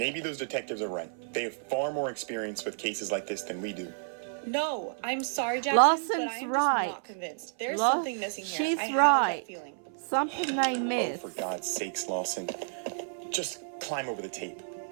those detectives are right. They have far more experience with cases like this than we do. No, I'm sorry, Jackson, Lawson's but I'm right. just not convinced. There's Law- something missing here. She's I have right. that feeling. Something they Oh, missed. for God's sakes, Lawson. Just climb over the tape.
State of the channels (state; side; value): silent; left; 57 dB below the other